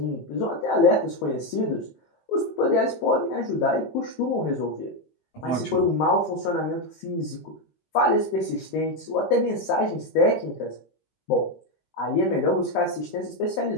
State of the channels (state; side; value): late; right; 19 ms